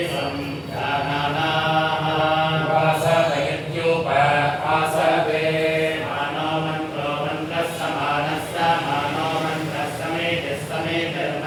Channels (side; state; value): both; identical; correlation 1.00